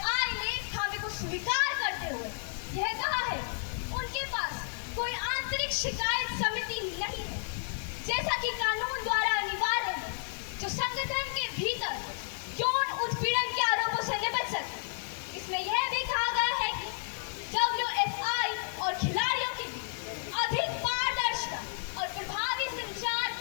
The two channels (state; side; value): silent; right; 57 dB below the other